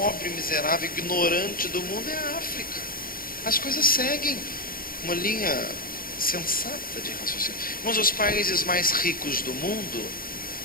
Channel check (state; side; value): late; right; 0.42 ms